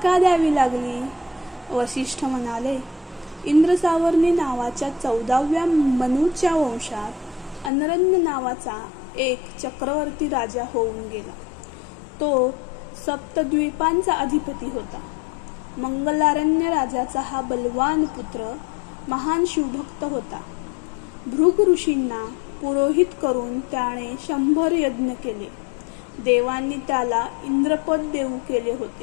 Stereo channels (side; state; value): right; drops out; at 7.7 s